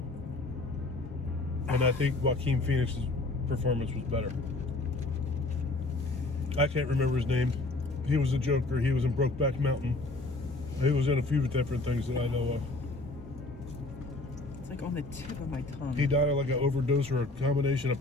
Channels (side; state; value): right; quieter; 3.0 dB